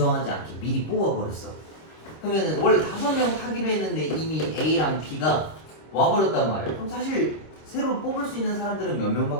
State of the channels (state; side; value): late; right; 26 ms